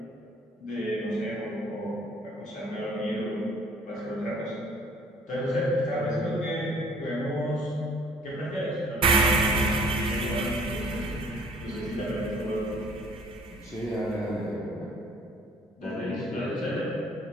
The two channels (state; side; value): normal; both; correlation 0.56